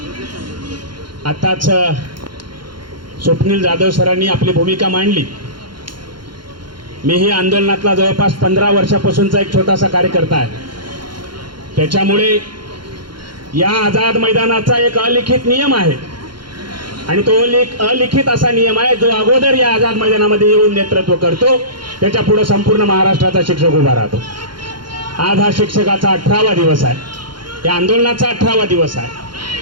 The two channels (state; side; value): late; left; 0.72 ms